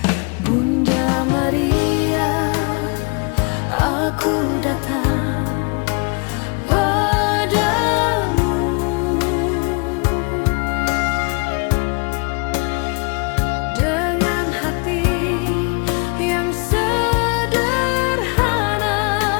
Bunda Maria, aku datang padamu dengan hati yang sederhana.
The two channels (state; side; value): quieter; right; 33.9 dB